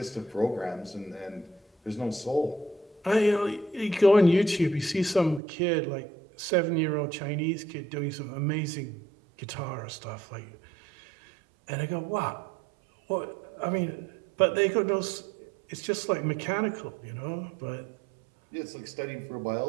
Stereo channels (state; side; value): drops out; left; at 5.4 s